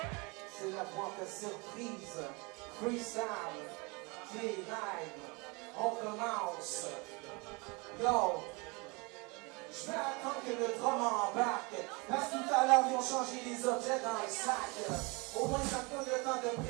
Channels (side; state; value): left; quieter; 28.4 dB